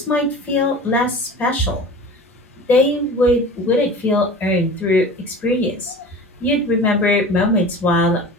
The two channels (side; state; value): both; normal; correlation 0.38